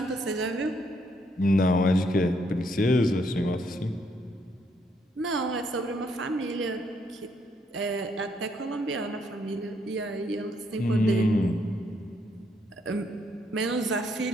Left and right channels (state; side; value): normal; both; correlation 0.72